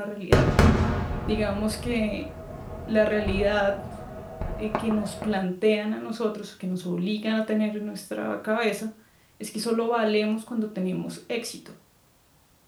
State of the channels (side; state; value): both; identical; correlation 1.00